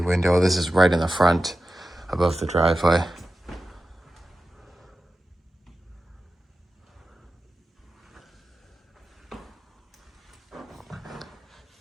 This is right in the front above the driveway.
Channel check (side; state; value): both; normal; correlation 0.93